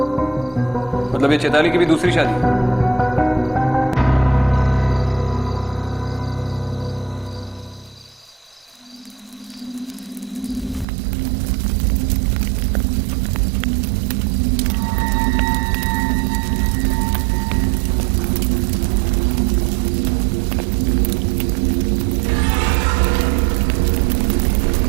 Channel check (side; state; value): left; drops out; at 10.9 s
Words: मतलब ये चैताली की भी दूसरी शादी है।